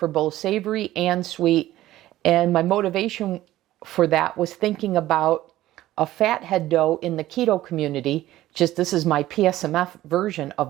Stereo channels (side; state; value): left; quieter; 15.0 dB